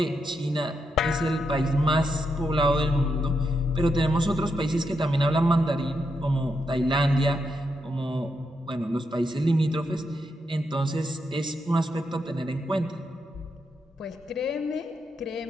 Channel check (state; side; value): normal; both; correlation 0.82